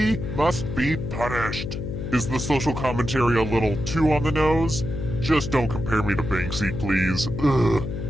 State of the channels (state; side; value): noise; left; hum, 5 dB below the sound